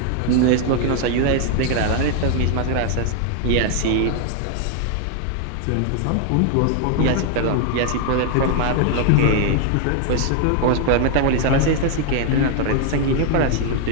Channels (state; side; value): different; both; correlation 0.00